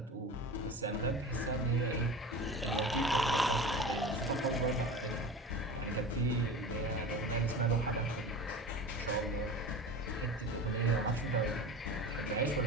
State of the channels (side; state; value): both; normal; correlation 0.33